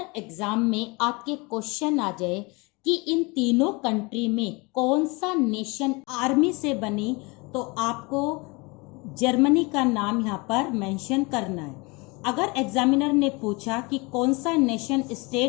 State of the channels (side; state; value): right; quieter; 27.1 dB